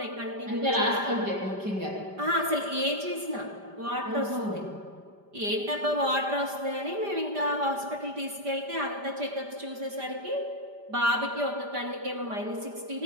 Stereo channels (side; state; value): left; late; 5.0 ms